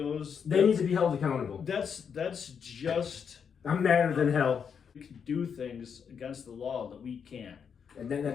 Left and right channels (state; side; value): quieter; right; 6.9 dB